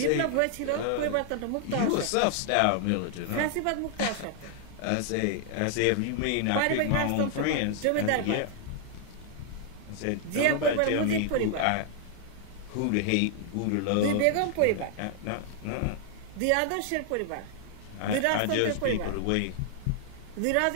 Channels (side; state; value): both; different; correlation 0.00